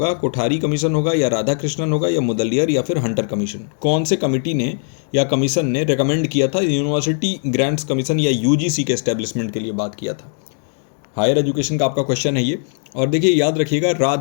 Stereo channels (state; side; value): silent; right; digital silence